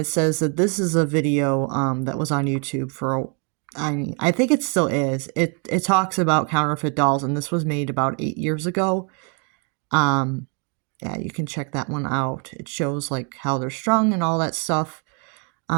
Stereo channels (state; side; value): quieter; left; 36.6 dB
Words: says that this is a video that was on YouTube for, I think it still is. It talks about counterfeit dolls, and this was made about 8 years ago. Yeah, you can check that one out. It shows like how they're strung and all that stuff.